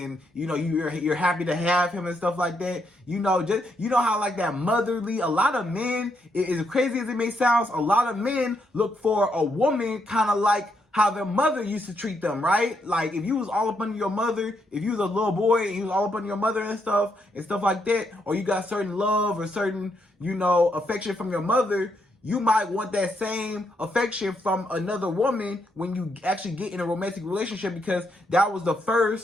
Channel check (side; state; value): both; normal; correlation 0.78